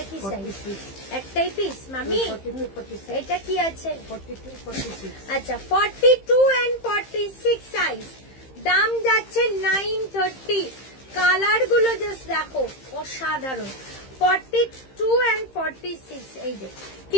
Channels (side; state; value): right; late; 15 ms